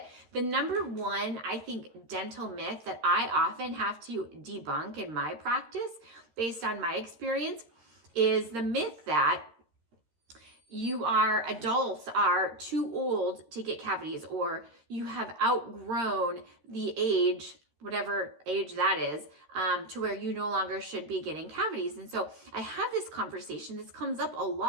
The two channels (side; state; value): left; late; 13 ms